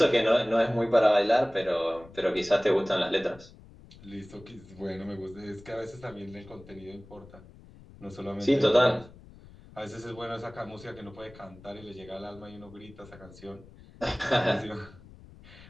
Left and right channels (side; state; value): left; noise; rumble, 21 dB below the sound